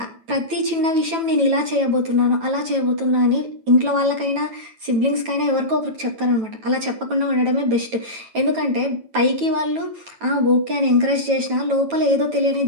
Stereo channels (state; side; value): late; left; 9.1 ms